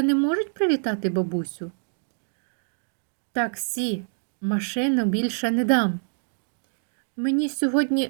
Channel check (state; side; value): silent; left; digital silence